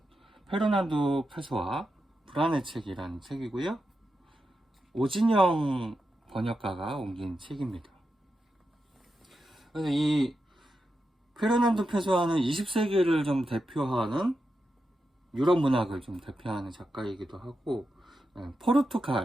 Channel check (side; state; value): both; normal; correlation 0.88